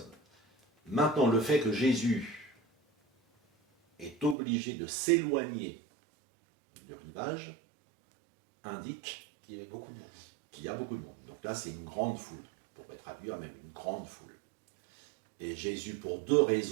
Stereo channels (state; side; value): drops out; left; at 4.4 s